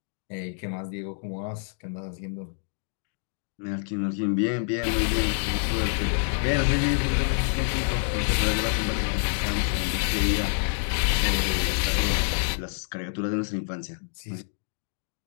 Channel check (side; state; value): right; silent; digital silence